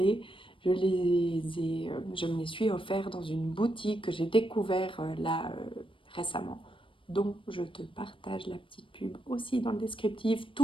je me les suis offerts dans une boutique que j'ai découvert récemment. Donc, je te partage la petite pub aussi dans le descriptif,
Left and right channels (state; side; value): late; right; 0.25 ms